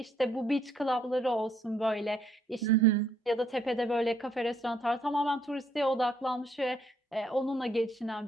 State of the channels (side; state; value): both; normal; correlation 0.69